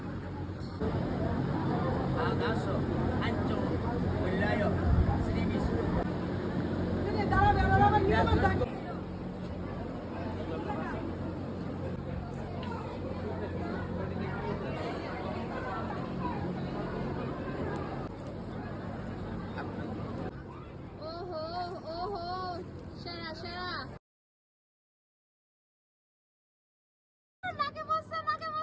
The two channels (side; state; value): both; identical; correlation 1.00